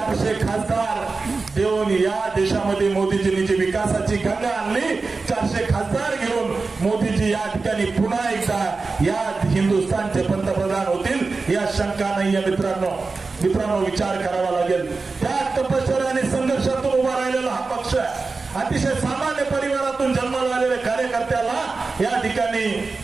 खासदार देऊन या देशामध्ये मोदीजींनी जी विकासाची गंगा आणली, 400 खासदार घेऊन मोदीजी या ठिकाणी पुन्हा एकदा या हिंदुस्थानचे पंतप्रधान होतील या शंका नाहीये मित्रांनो विचार करावा लागेल। त्या तपश्चर्या आणि संघर्षातून उभा राहिलेला हा पक्ष आहे। अतिशय सामान्य परिवारातून जन्माला आलेल्या कार्यकर्त्याला या ठिकाणी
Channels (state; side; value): quieter; left; 4.0 dB